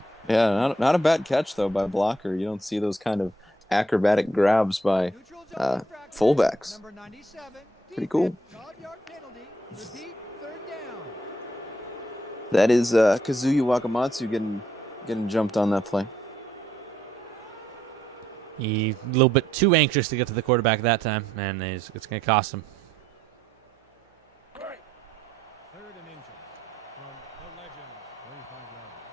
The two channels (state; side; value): normal; both; correlation 0.72